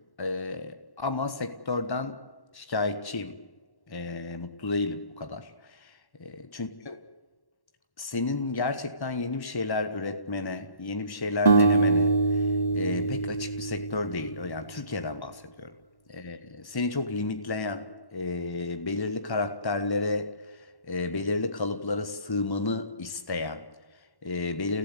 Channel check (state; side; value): late; right; 1.1 ms